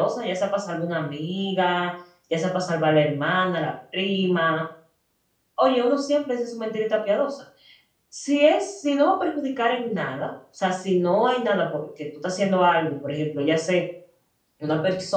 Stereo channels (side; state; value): both; identical; correlation 1.00